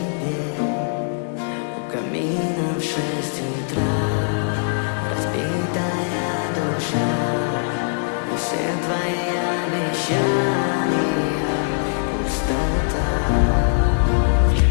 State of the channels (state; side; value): silent; right; 57 dB below the other